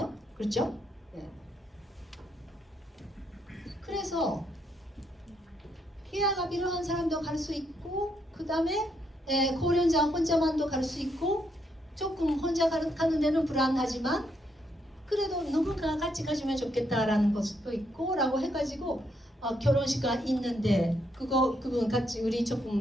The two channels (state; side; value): normal; both; correlation 0.76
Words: 그렇죠? 네. 그래서 케어가 필요한 사람도 갈 수 있고, 그 다음에 고령자 혼자만도 갈 수 있고, 조금 혼자 가는 데는 불안하지만 그래도 누군가 같이 가주면 좋겠다라는 것도 있고 라고 해가지고 결혼식가 있는데 그분 같이 우리